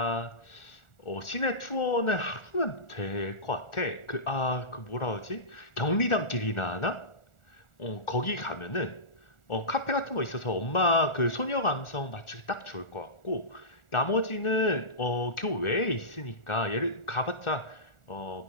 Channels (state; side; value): late; right; 1.4 ms